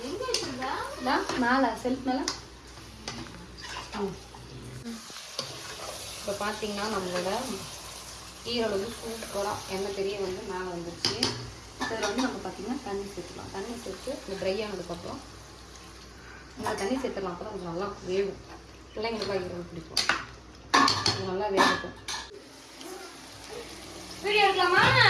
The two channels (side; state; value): both; identical; correlation 1.00